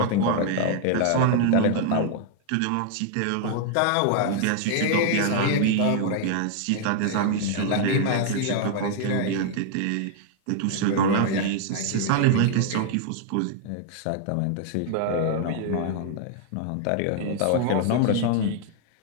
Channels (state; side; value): different; both; correlation -0.01